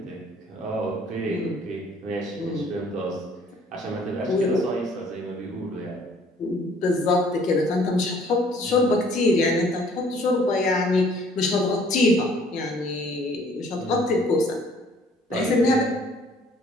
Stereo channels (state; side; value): normal; both; correlation 0.58